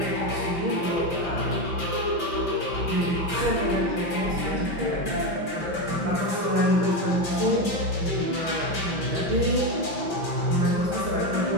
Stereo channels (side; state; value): left; late; 5.9 ms